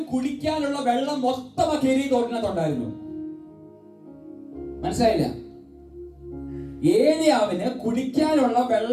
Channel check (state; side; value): identical; both; correlation 1.00